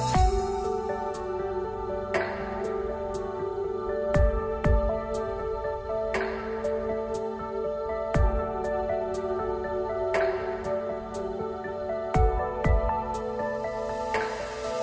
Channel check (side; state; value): both; identical; correlation 1.00